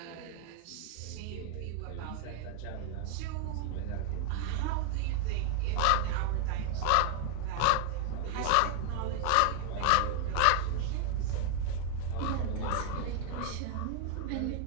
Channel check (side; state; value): both; different; correlation 0.00